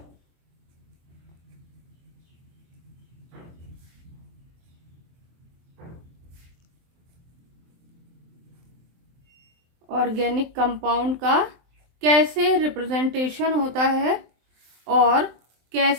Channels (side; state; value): left; late; 23 ms